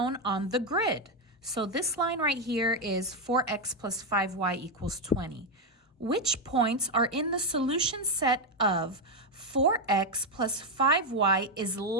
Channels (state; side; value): normal; both; correlation 0.04